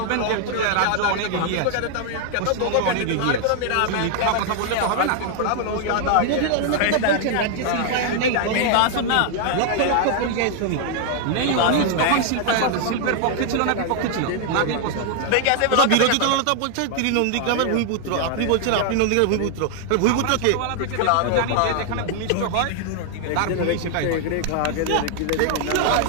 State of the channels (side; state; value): both; different; correlation 0.00